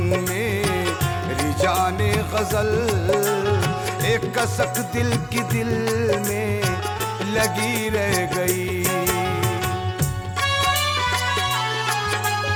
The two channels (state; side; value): identical; both; correlation 1.00